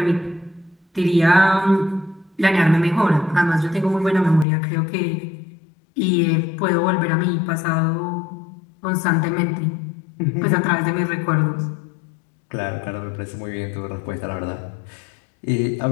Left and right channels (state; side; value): drops out; right; at 4.5 s